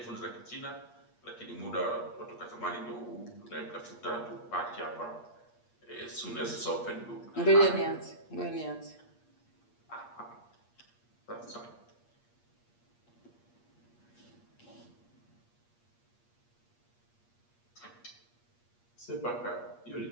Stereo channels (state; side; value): late; right; 8.5 ms